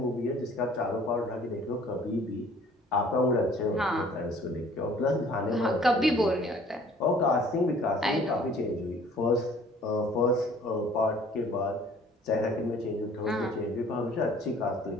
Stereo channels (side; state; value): both; normal; correlation 0.54